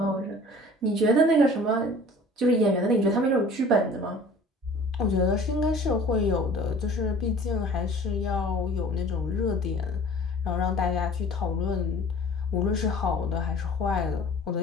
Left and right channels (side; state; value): both; normal; correlation 0.46